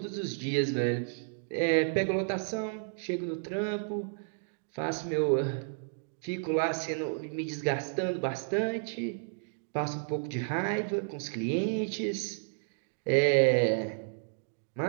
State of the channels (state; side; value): silent; left; digital silence